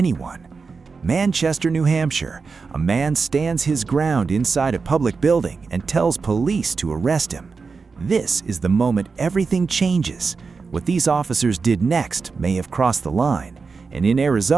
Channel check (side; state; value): left; quieter; 4.8 dB